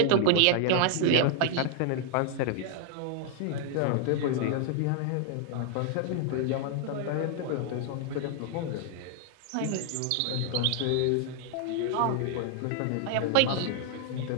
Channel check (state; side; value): different; both; correlation 0.00